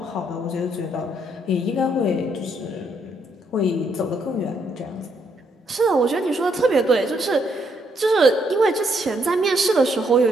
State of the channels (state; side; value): normal; both; correlation 0.73